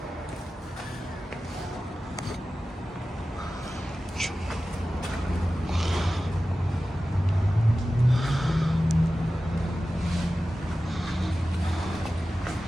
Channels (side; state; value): both; normal; correlation 0.95